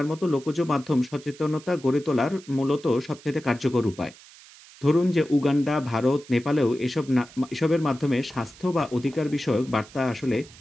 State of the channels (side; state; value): right; noise; hiss, 22 dB below the sound